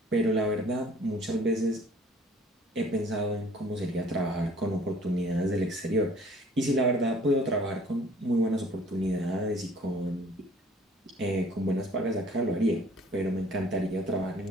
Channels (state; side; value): normal; both; correlation 0.54